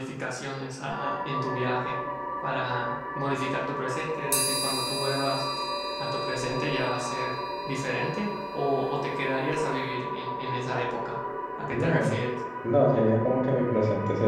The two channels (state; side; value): identical; both; correlation 1.00